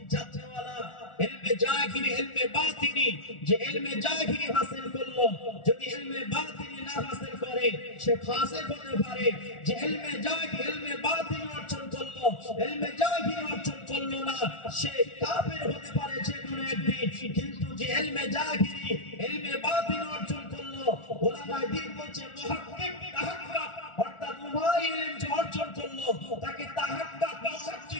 জাননেওয়ালা, ইলমে জাহিরি ইলমে বাতিনি, যে ইলমে জাহিরি হাসিল করলো যদি ইলমে বাতিনি না হাসিল করে সে ফাসিক হতে পারে। যে ইলমে জাহিরি ইলমে বাতিনি অর্জন করলো, ইলমে জাহিরি অর্জন করলো না, সে কাফের হতে পারে যে কোনো একদিন। কিন্তু যে ইলমে জাহিরি ইলমে বাতিনি অর্জন করলো, উলামায়ে দ্বীন বলছে মুহাক্কিক তাহাক্কুক, অর্থাৎ উভয় ইলম যে অর্জন করলো তাকে তাহাক্কুক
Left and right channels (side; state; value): right; late; 1.4 ms